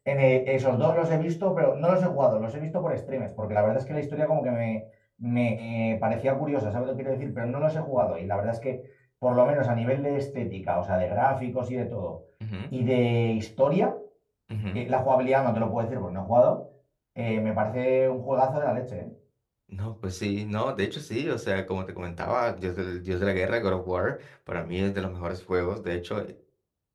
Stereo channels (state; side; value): identical; both; correlation 1.00